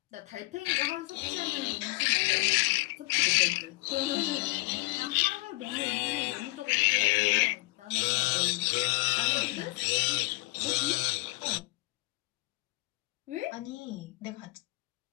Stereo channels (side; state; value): right; quieter; 24.9 dB